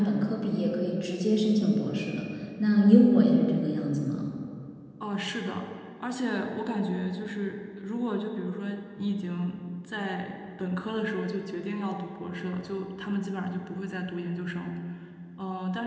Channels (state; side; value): identical; both; correlation 1.00